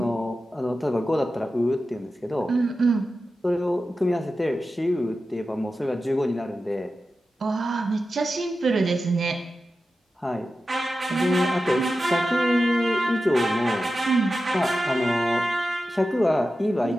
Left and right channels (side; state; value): both; normal; correlation 0.92